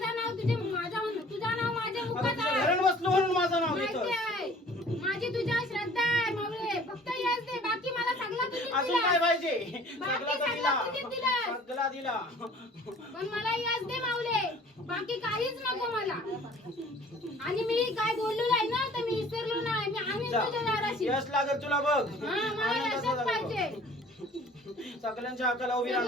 नाव तुझं नाव माझ्या आता मुखात तुझ्या आहे. घरात बसलो म्हणून माझं नाव माहिती घेतो. आहे. माझी तुझ्यावर श्रद्धा आहे माऊली. फक्त यश दे, बाकी मला सगळं तुझीच अजून दिला. काय पाहिजे बाकी सगळा सगळं दिला तुझीच दिलं. सगळा दिला. पण मला यश दे माऊले, बाकी काहीच नको मला. आणि मी काय बोललो नाही ना, तर मी विसरलो नाही. मी आम्ही जा. तुझ्या दाराशी. यश लागेल तुला बघ हा, मला आनंद यशच असा पाहिजे. लागेल. सगळ्यांच्या हाकाला उभी सगळं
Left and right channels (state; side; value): normal; both; correlation 0.50